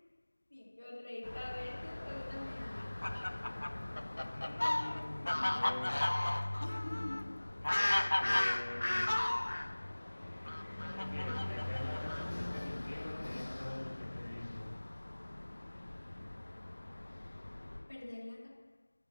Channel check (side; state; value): both; inverted; correlation -1.00